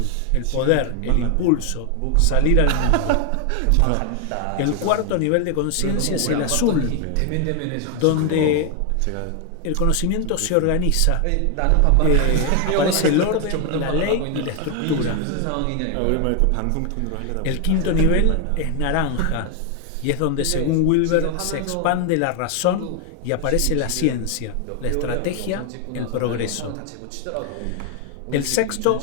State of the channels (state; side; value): different; both; correlation 0.00